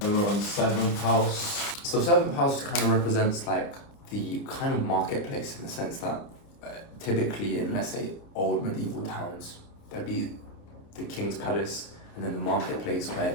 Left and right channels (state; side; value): late; right; 29 ms